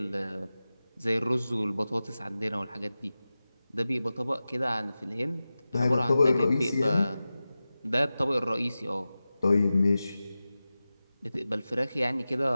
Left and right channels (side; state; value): both; inverted; correlation -0.95